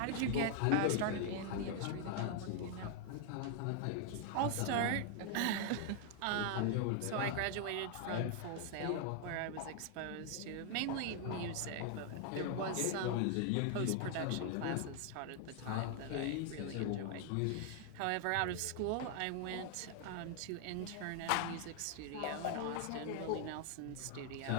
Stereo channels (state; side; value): different; both; correlation 0.00